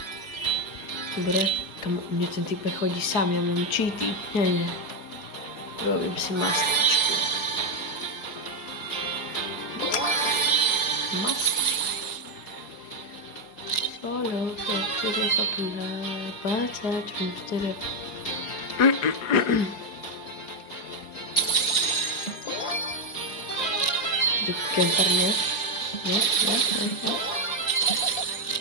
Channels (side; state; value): right; late; 4.7 ms